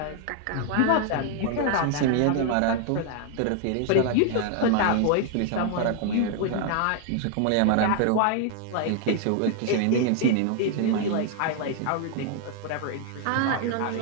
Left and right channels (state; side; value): different; both; correlation 0.00